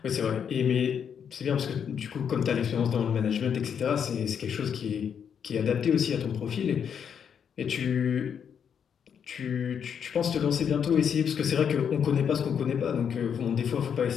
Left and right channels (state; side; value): quieter; right; 7.7 dB